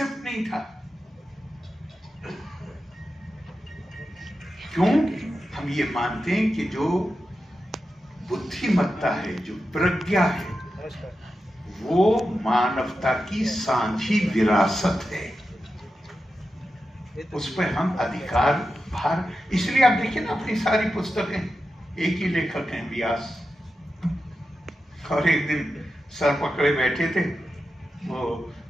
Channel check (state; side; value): normal; both; correlation 0.90